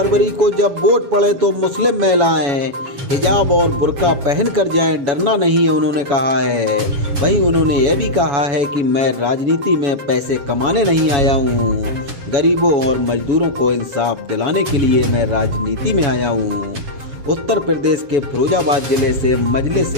को जब वोट पड़े तो मुस्लिम महिलाएं हिजाब और बुर्का पहन कर जाएं, डरना नहीं है, उन्होंने कहा है। वहीं उन्होंने यह भी कहा है कि मैं राजनीति में पैसे कमाने नहीं आया हूँ, गरीबों और मजदूरों को इंसाफ दिलाने के लिए मैं राजनीति में आया हूँ। उत्तर प्रदेश के फिरोजाबाद जिले से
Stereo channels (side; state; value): left; late; 7.2 ms